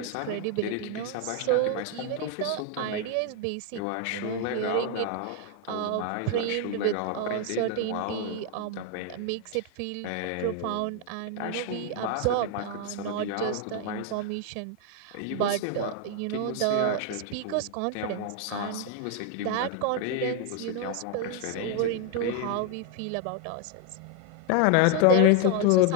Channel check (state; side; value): different; both; correlation 0.00